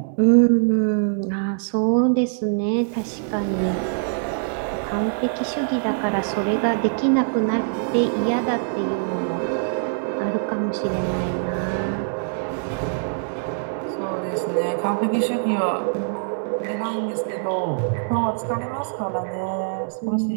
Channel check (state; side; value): silent; left; 63 dB below the other